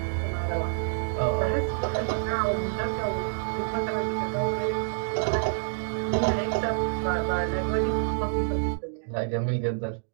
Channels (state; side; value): silent; left; digital silence